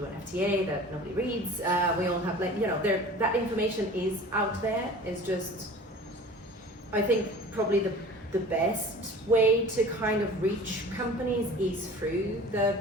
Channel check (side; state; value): both; normal; correlation 0.42